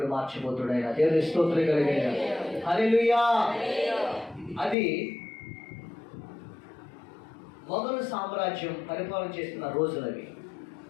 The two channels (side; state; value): right; drops out; at 4.8 s